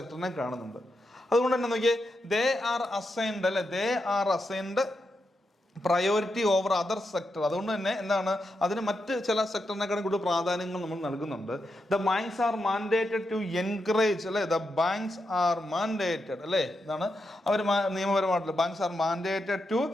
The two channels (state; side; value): normal; both; correlation 0.85